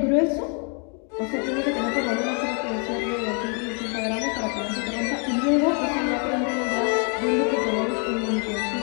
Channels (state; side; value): quieter; right; 39.7 dB